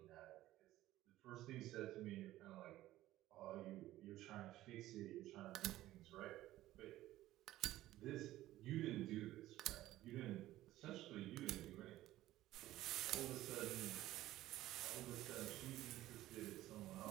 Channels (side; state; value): left; quieter; 15.2 dB